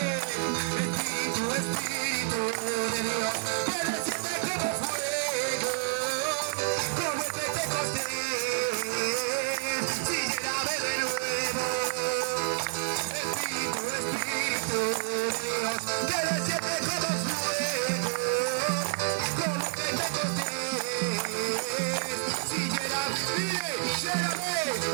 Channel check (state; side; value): silent; left; digital silence